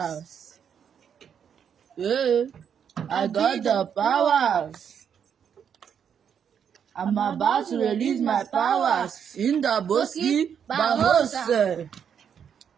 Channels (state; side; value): quieter; left; 7.9 dB